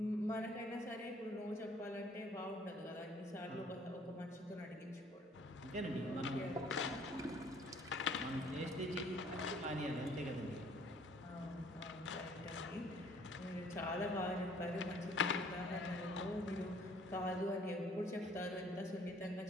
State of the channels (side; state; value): both; normal; correlation 0.58